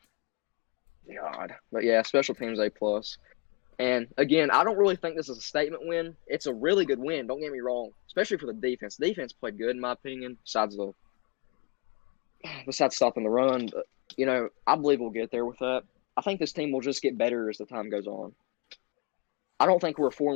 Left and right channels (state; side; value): quieter; right; 32.5 dB